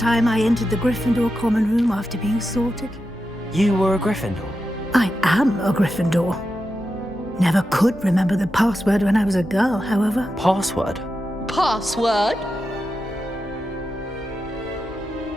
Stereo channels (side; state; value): both; normal; correlation 0.89